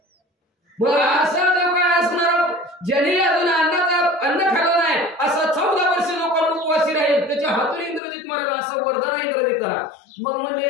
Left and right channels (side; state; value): right; drops out; at 8.0 s